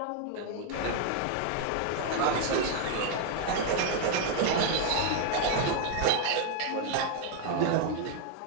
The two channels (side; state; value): both; different; correlation 0.00